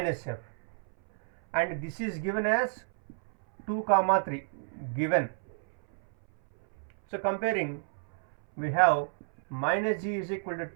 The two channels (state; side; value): silent; left; 58 dB below the other